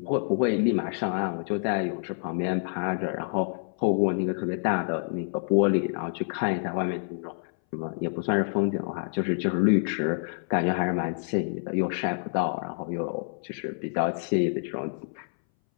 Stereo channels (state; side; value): silent; right; 60 dB below the other